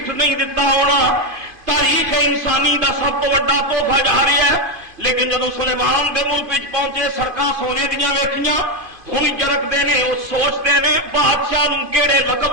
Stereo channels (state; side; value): late; left; 2.5 ms